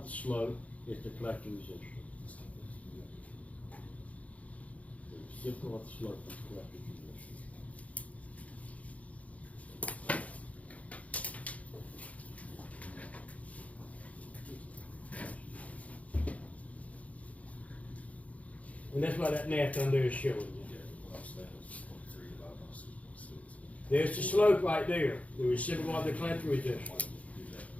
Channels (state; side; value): late; right; 0.068 ms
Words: the slope is the collector resistor. The reciprocal of the slope is the collector resistor. And that's what that math under is showing you. There's the slope right there, the reciprocal of the collector resistor.